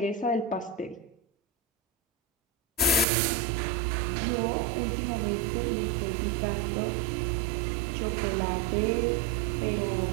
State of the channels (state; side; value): drops out; left; at 3.1 s